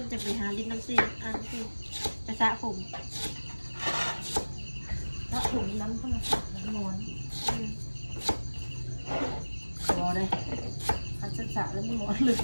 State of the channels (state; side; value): inverted; both; correlation -1.00